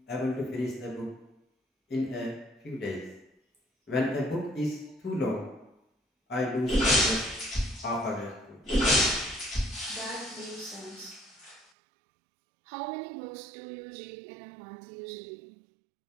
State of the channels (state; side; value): drops out; left; at 11.7 s